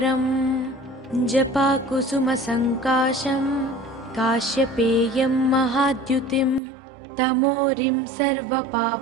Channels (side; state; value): left; drops out; at 6.6 s